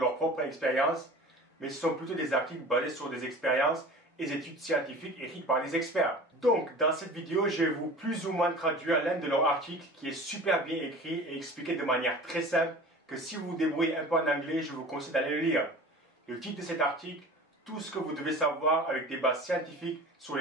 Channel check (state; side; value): normal; both; correlation 0.40